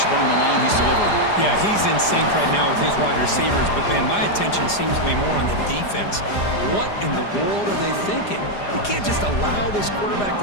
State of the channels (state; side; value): late; right; 4.9 ms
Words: on the line, he's delivering. Yeah, he's in sync right now with his wide receivers, but, man, my attention seems to be more on the defense. What in the world are they thinking? You can't just allow this quarterback